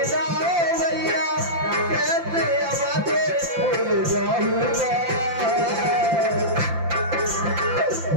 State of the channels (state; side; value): late; left; 5.8 ms